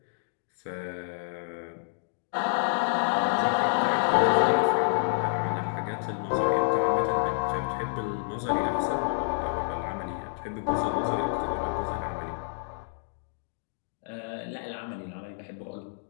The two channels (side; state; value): right; silent; digital silence